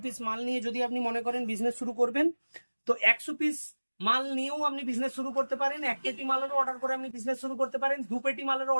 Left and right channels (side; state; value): both; inverted; correlation -1.00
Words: পিস মাল নিয়ে যদি আপনি মনে করেন বিজনেস শুরু করবেন, তো 100 পিস মাল নিয়েও আপনি বিজনেস শুরু করতে পারেন। 1 পেটি মালেরও অর্ডার করে আপনি বিজনেস শুরু করতে পারেন। 2 পেটি মালেরও